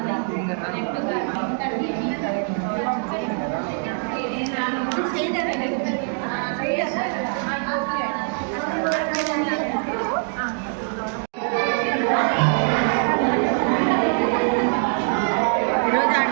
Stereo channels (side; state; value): left; silent; 57 dB below the other